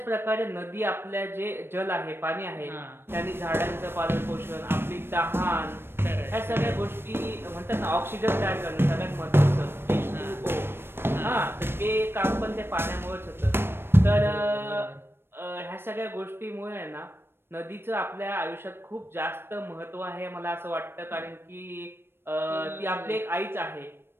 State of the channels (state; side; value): late; left; 0.11 ms